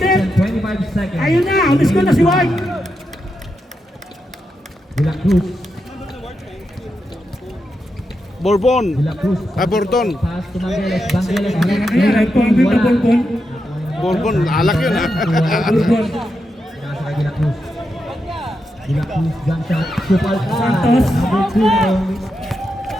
and 25 seconds. Ayun na. Ulis ko na si White. De La Cruz. Bourbon. De La Cruz. Bourbon. Pass to Mangeles. Mangeles. Ayan. Ay, pangit na Bourbon. Bourbon. Alak yun ha. Bourbon. Nasa kay De La Cruz. De La Cruz. Jump shot. Supal pa. Santos. Number 2 na yung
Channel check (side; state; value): both; normal; correlation 0.86